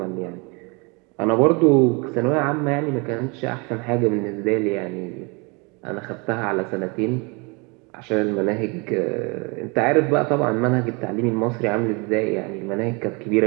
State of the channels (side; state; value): left; quieter; 30.0 dB